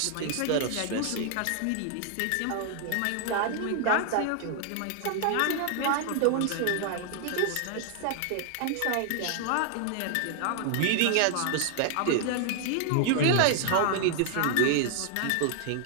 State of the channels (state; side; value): different; both; correlation 0.00